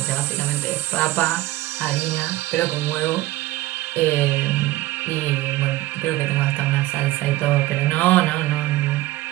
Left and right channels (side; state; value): left; quieter; 17.1 dB